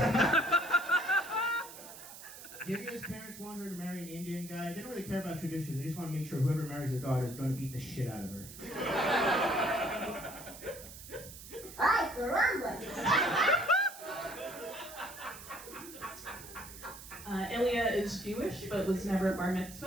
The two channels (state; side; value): noise; right; hiss, 14 dB below the sound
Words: Divya's parents want her to marry an Indian guy. They don't really care about tradition. They just want to make sure whoever marries their daughter is going to beat the shit out of her. Ilya is Jewish, but was never bar